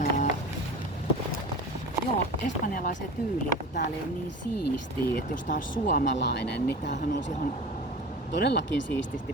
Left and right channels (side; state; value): both; normal; correlation 0.35